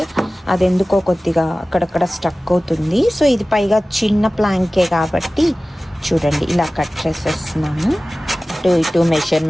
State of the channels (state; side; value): normal; both; correlation 0.97